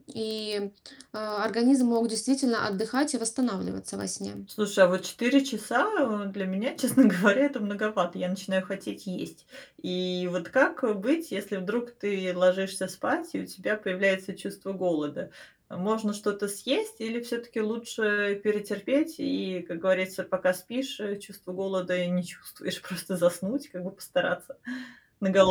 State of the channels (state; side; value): identical; both; correlation 1.00